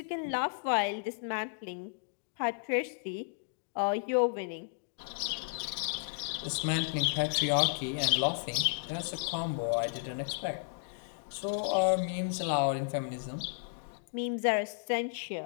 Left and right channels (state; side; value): silent; right; digital silence